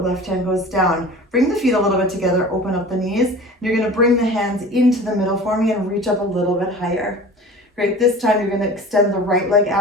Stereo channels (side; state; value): both; normal; correlation 0.40